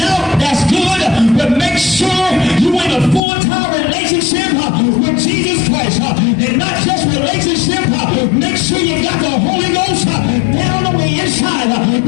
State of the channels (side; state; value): right; drops out; at 3.2 s